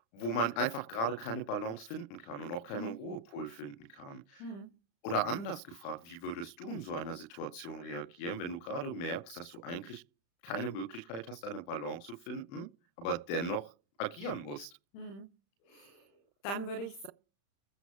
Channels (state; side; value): late; right; 35 ms